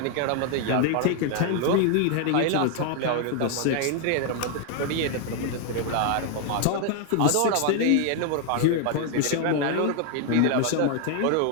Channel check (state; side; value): different; both; correlation 0.01